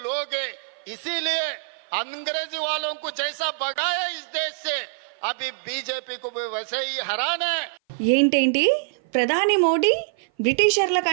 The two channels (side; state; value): left; silent; 56 dB below the other